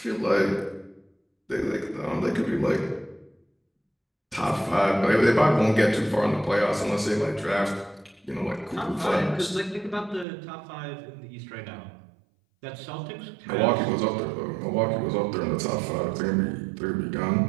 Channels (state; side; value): drops out; left; at 10.2 s